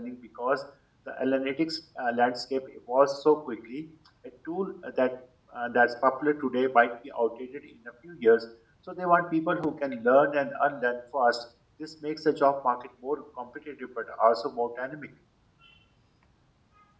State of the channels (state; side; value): identical; both; correlation 1.00